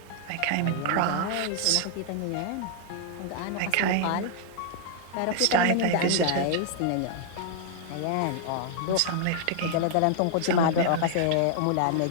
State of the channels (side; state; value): both; different; correlation -0.01